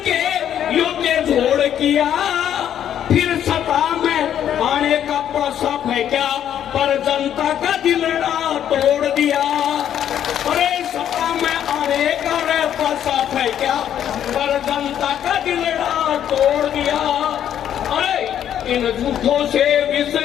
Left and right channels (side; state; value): right; quieter; 10.1 dB